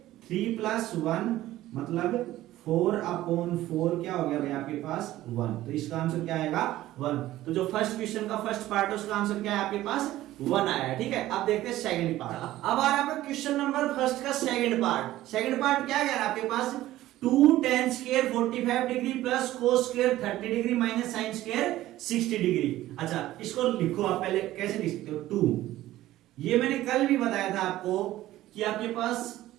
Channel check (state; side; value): quieter; left; 15.2 dB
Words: 3 + 1 मतलब 4/4 क्या हो गया भाई आपके पास 1। तो इसका आंसर क्या आएगा 1। तो जो फर्स्ट क्वेश्चन का फर्स्ट पार्ट है उसका आंसर क्या है आपके पास 1 आया है, ठीक है। अब देखते हैं सेकंड पार्ट। अब आ रहा है क्वेश्चन नंबर फर्स्ट का सेकंड पार्ट। सेकंड पार्ट क्या कह रहा है आपके पास 2 tan square 45 degree plus cos square 30 degree minus sin square 60 degree. अच्छा इसको लिखो आप, पहले कैसे लिख सकते हो 2। ये मैंने कल भी बताया था आपको कि आपके पास